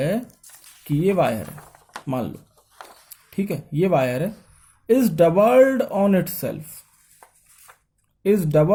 कि ये वायर है, मान लो, ठीक है, ये वायर है, is doubled on itself, is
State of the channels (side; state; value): both; identical; correlation 1.00